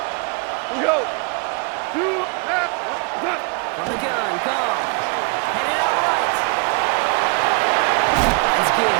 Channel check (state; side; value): quieter; left; 34.0 dB